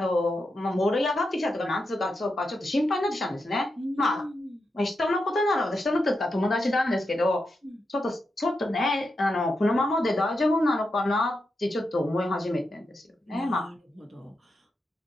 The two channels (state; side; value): normal; both; correlation 0.87